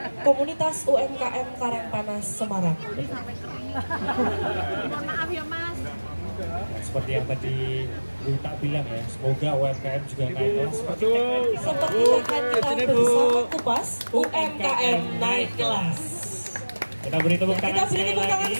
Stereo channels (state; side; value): inverted; both; correlation -1.00